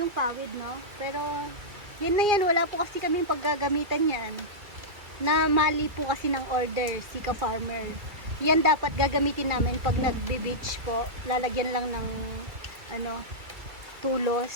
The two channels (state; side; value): late; left; 2.4 ms